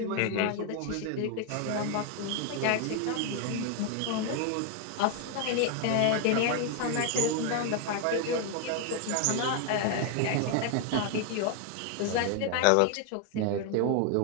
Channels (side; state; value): both; different; correlation 0.01